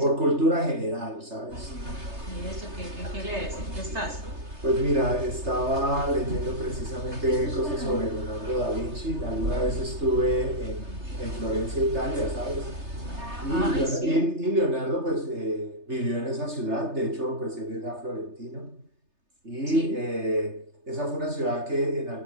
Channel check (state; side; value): late; left; 3.3 ms